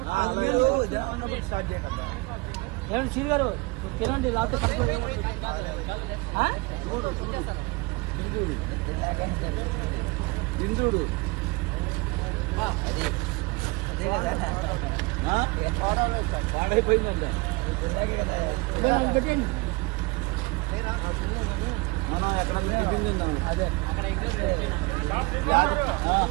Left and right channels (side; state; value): left; quieter; 25.6 dB